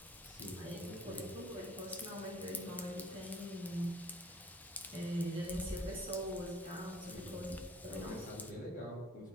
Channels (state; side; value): normal; both; correlation 0.55